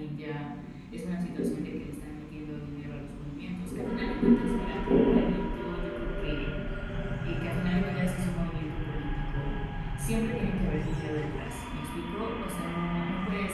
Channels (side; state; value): both; identical; correlation 1.00